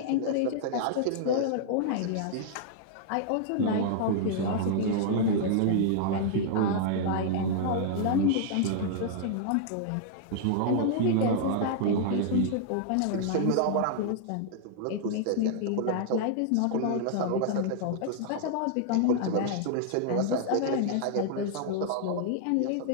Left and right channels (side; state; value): both; different; correlation -0.01